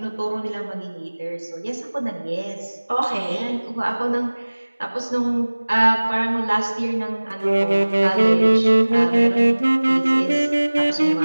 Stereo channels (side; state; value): both; inverted; correlation -1.00